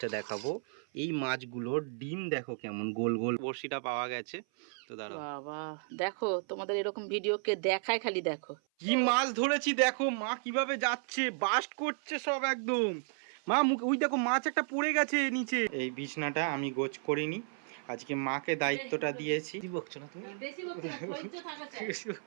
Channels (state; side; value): silent; left; 55 dB below the other